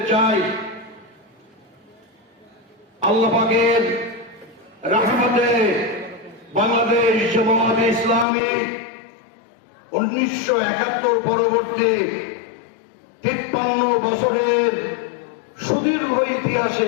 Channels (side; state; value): right; drops out; at 8.2 s